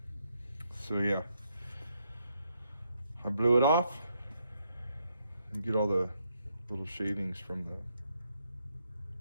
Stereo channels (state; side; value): inverted; both; correlation -0.77